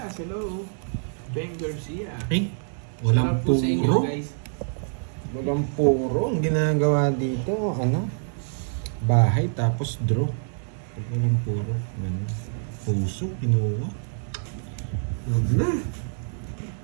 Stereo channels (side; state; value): left; silent; digital silence